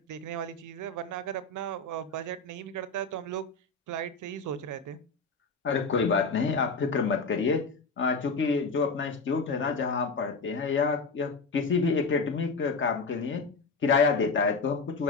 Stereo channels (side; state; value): right; quieter; 3.9 dB